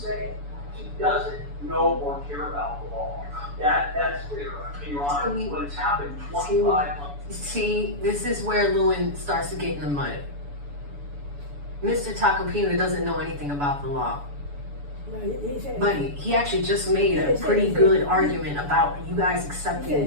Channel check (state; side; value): late; left; 7.0 ms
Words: it. She doesn't know or care about the law. That's clear. Your Honor, when it's happened 25 months. See, this is where Lewin starts to get in the mud. Mr. Tacopina doesn't know anything about the law. But he actually just made a pretty good argument about you guys